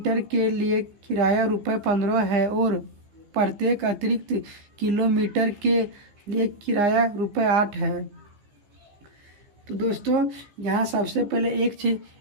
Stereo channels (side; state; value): left; late; 15 ms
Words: के लिए किराया ₹15 है और प्रत्येक अतिरिक्त किलोमीटर के लिए किराया ₹8 है। तो दोस्तों, यहाँ सबसे पहले